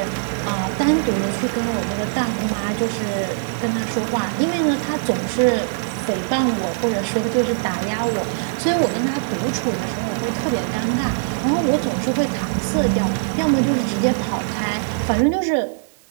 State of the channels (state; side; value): silent; left; digital silence